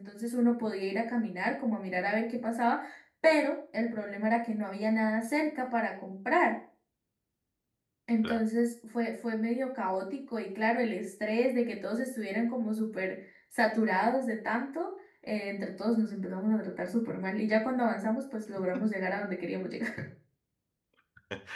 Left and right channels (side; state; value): both; identical; correlation 1.00